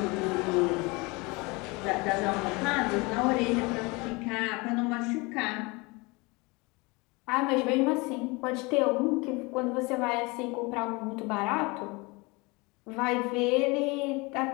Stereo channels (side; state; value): right; quieter; 26.0 dB